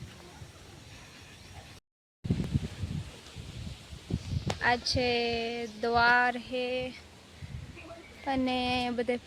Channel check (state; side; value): identical; both; correlation 1.00